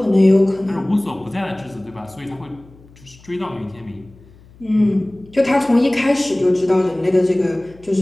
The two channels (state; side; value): noise; left; hum, 25 dB below the sound